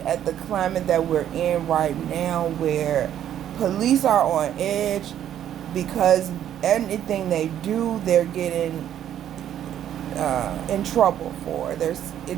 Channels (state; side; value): quieter; left; 10.6 dB